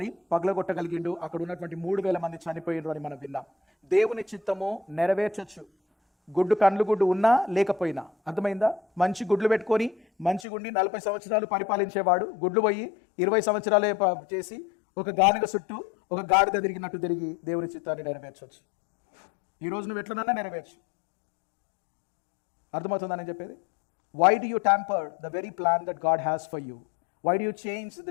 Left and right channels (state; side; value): drops out; right; at 10.5 s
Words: పగలగొట్టగలిగిండు. అక్కడ ఉన్నటువంటి 3,000 మంది చనిపోయిండ్రు అని మనం విన్నాం. దేవుని చిత్తము నెరవేర్చొచ్చు, కండ్లు గుడ్డు ఉన్నా లేకపోయినా. అర్థమైందా? మంచి గుడ్లు పెట్టుకొని మంచి గుండి 40 సంవత్సరాలు పరిపాలించేవాడు గుడ్లు పోయి 20 సంవత్సరాలే చేసి ఒక గానుగ చుట్టూ ఒక గాడిద తిరిగినట్టు తిరిగి దేవుని చిత్తాన్ని నెరవేర్చవచ్చు. ఈ రోజు నువ్వు ఎట్లనన్నా నెరవేర్చు. అర్థమవుతుందని చెప్పేది? Why do you tamper the very plan that God has for you? Why do you change